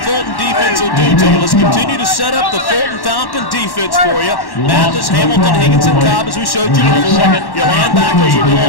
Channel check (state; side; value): late; right; 1.1 ms